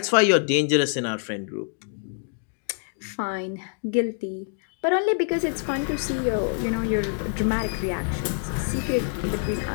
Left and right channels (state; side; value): silent; right; 61 dB below the other